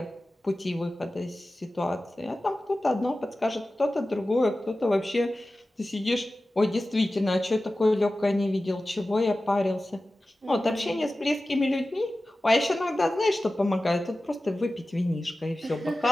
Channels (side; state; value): both; normal; correlation 0.95